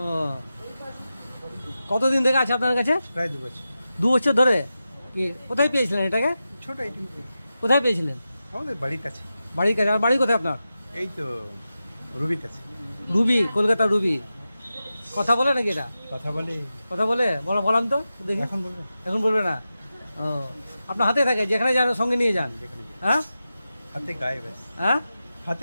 কতদিন থেকে আছে আপনার কাছে? প্রায় 2 বছর। 2 বছর ধরে? কি কোথায় পেয়েছিলেন এটাকে? ছোট এটি কোথায় পেয়েছিলেন? আমাদের বাড়ির কাছে। বাড়ির কাছে? আর বাড়ি কোথায় আপনার? এই তো রুবির কাছে। Ruby, Kolkata Ruby. কথা বলে নাকি এটা? কথা বলে। কথা বলে? বলাম তো দেখি। এখন বলবো? এখন বলবে না? ও, আপনার হাতে থাকে, যেখানে যান সঙ্গে নিয়ে যান? যেখানে হ্যাঁ হাতে গায়ে ব্যাস। হ্যাঁ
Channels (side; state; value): both; inverted; correlation -0.92